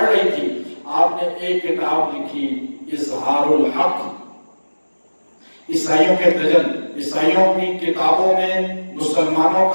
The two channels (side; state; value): both; inverted; correlation -1.00